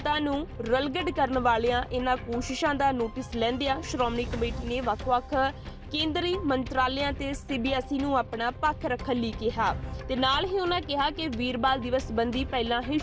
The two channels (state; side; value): identical; both; correlation 1.00